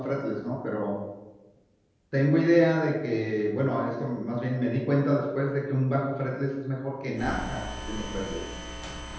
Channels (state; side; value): identical; both; correlation 1.00